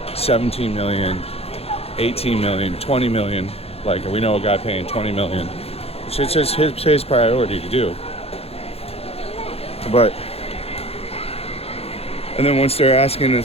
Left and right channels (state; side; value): late; right; 0.29 ms